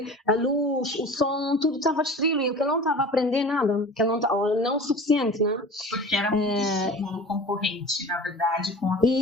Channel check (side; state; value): both; normal; correlation 0.38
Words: a luz, o som, tudo estava distribuído, que ele não estava a aprender nada, que ele não o suficiente, né? Porque era muito estímulo concorrente, na verdade, com a